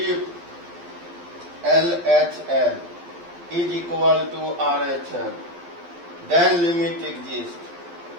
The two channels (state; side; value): late; left; 12 ms